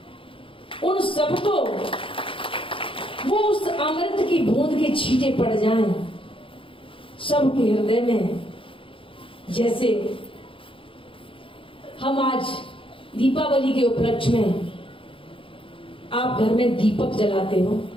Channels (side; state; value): right; late; 0.26 ms